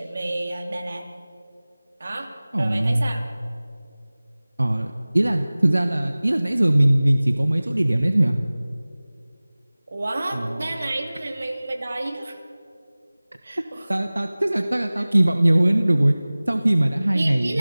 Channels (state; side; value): inverted; both; correlation -0.99